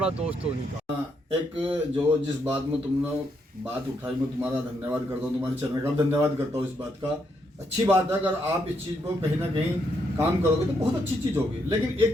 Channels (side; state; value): both; normal; correlation 0.77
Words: दोस्त तो उन्हीं का। एक जो जिस बात में तुमने बात उठाई, मैं तुम्हारा धन्यवाद करता हूँ, तुम्हारे चैनल का धन्यवाद करता हूँ इस बात का। अच्छी बात है, अगर आप इस चीज़ को कहीं ना कहीं काम करोगे तो बहुत अच्छी चीज़ होगी। लेकिन